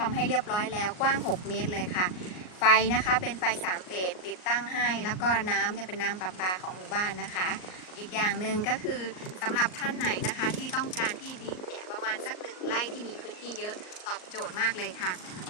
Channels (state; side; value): late; right; 38 ms